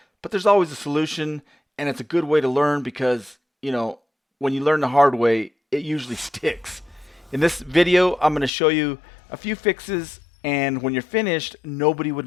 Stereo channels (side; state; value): right; drops out; at 8.5 s